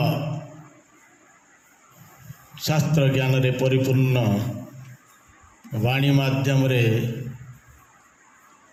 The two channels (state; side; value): identical; both; correlation 1.00